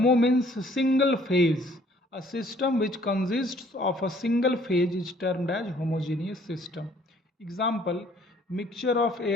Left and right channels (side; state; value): both; normal; correlation 0.59